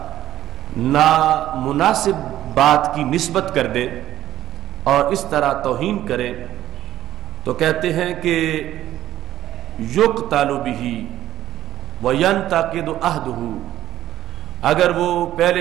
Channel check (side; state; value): left; quieter; 13.0 dB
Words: نامناسب بات کی نسبت کر دے اور اس طرح توہین کرے تو کہتے ہیں کہ یقتل بہ وینتقد عہدہ، اگر وہ